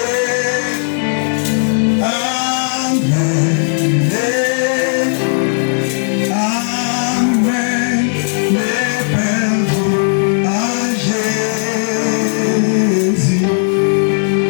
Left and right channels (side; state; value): right; silent; digital silence